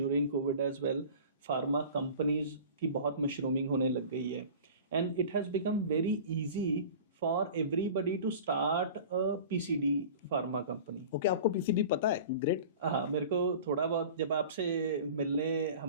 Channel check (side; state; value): both; inverted; correlation -0.39